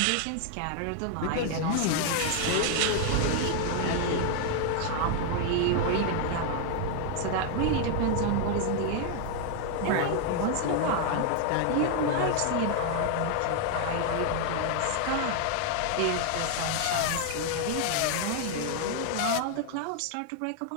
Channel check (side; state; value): both; different; correlation 0.00